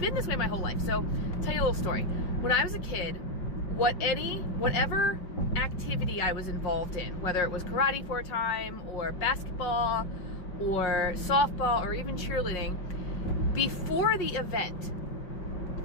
this way my whole life. So, I'll tell you a little story. When I was a kid, whatever activity I was involved in, whether it was karate for a time, or basketball, or softball, or even cheerleading, before the event,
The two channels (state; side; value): late; right; 5.4 ms